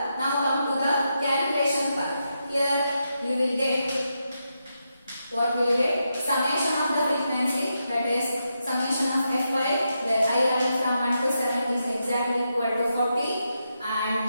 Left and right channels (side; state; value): both; inverted; correlation -0.85